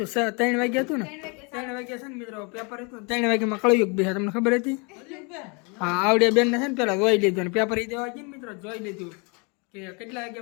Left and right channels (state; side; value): quieter; right; 32.3 dB